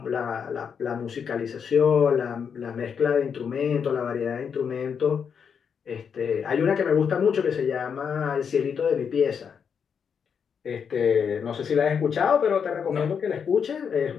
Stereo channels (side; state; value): right; quieter; 6.9 dB